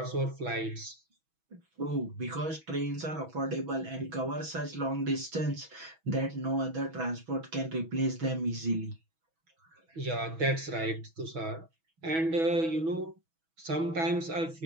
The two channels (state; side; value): late; left; 6.2 ms